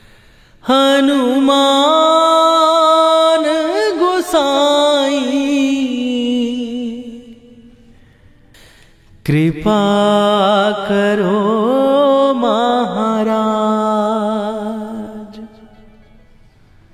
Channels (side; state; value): both; identical; correlation 1.00